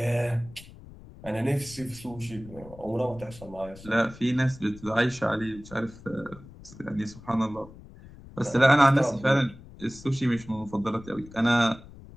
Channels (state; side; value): noise; left; rumble, 19 dB below the sound